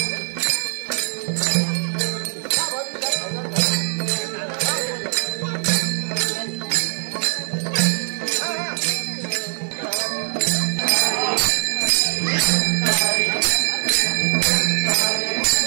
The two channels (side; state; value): left; silent; digital silence